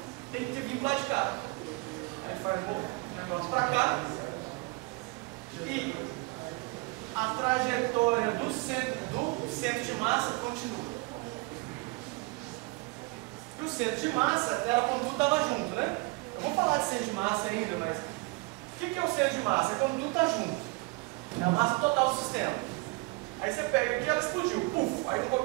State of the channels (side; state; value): left; quieter; 26.1 dB